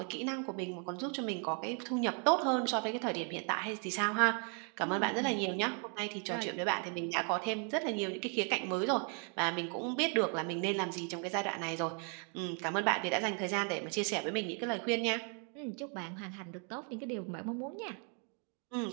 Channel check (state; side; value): quieter; left; 39.9 dB